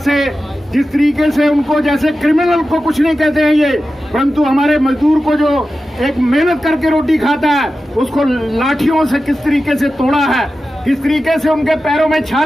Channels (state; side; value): normal; both; correlation 0.93